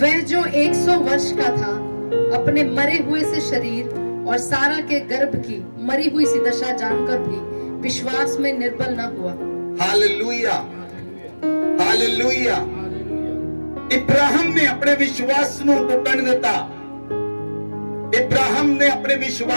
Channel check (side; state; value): both; inverted; correlation -1.00